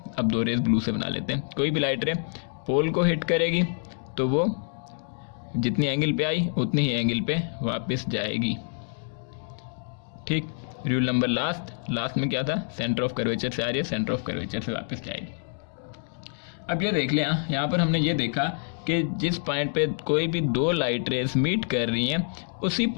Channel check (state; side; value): silent; right; digital silence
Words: अब 2 रेस ब्लू से बना लेते हैं। कोई भी लाइट रे पोल को हिट करेगी तो वो जितनी एंगल पे आई उतनी ही एंगल पे वापस जाएगी। ठीक। रूल नंबर लास्ट में क्या था, सेंटर ऑफ कर्वेचर से आ रही है, सेंटर ऑफ कर्वेचर से वापस जाएगी। अब ये देख लें, यहाँ पर हमने ये देखा कि जिस पॉइंट पे कोई भी 2 लाइट रेस मीट कर रही हैं उसी